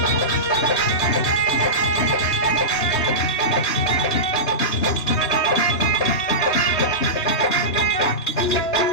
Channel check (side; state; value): right; late; 3.3 ms